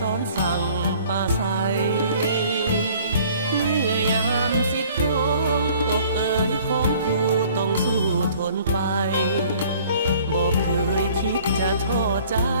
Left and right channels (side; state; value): both; inverted; correlation -0.53